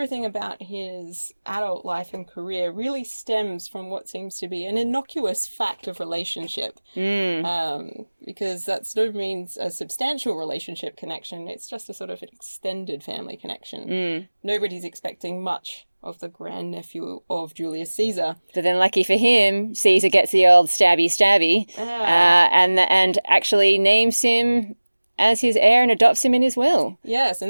about his adult life and career really stems from what seems to be an innocuous fact of relationship. Because that's no means a substantial relationship connection. It's just a sort of an extended family connection. Nobody's expecting much of the grandnephew of Julius Caesar. But then lucky for him, Caesar gets the old stabby and actually names him as his heir and adopts him in his will. Yes,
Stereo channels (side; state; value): both; inverted; correlation -1.00